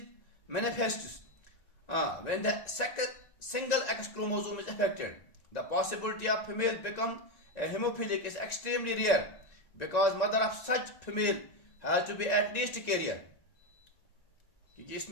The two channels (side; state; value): right; late; 1.9 ms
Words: manifests when the single X chromosome is affected. The possibility of female become a hemophilic is extremely rare because mother of such female has to be at least a carrier. क्योंकि